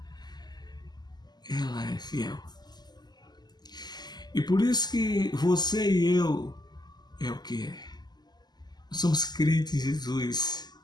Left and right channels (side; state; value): right; late; 0.20 ms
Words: Ela é fiel. E por isso que você e eu é o que é. Nós somos crentes em Jesus